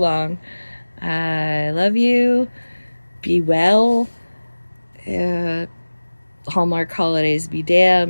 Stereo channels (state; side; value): inverted; both; correlation -1.00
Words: I love you. Be well. Hallmark holidays be